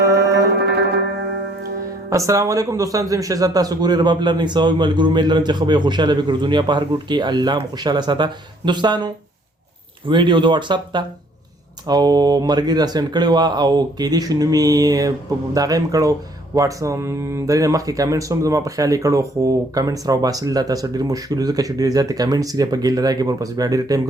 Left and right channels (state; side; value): normal; both; correlation 0.62